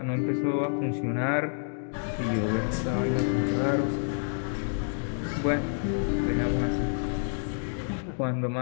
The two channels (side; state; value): right; silent; digital silence